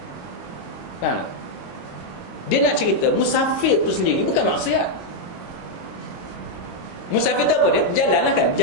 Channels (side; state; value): right; late; 22 ms